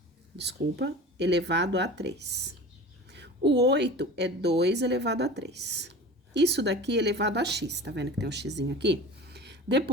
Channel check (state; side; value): normal; both; correlation 0.36